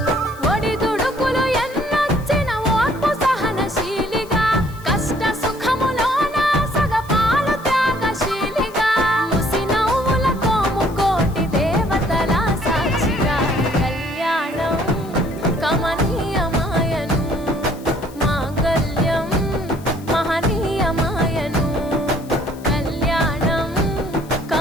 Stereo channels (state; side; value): noise; left; hiss, 23 dB below the sound